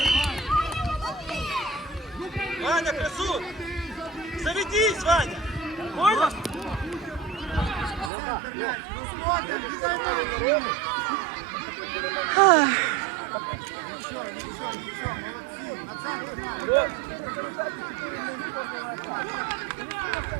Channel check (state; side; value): drops out; left; at 8.1 s